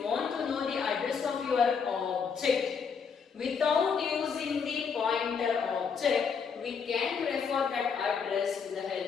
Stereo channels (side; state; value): right; quieter; 6.1 dB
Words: want to know the address of your object without using the pointer object, we can refer that address with the